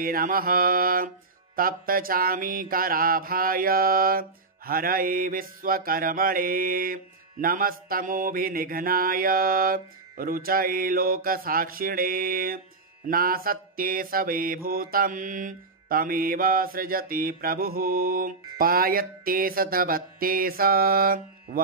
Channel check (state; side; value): quieter; left; 3.9 dB